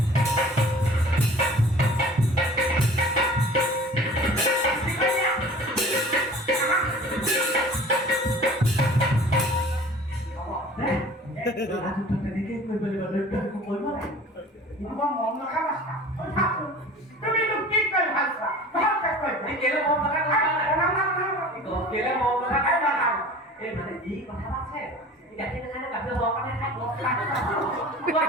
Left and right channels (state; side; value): normal; both; correlation 0.44